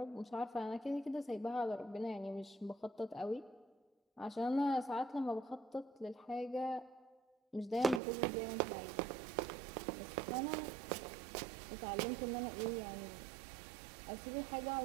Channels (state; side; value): drops out; left; at 8.0 s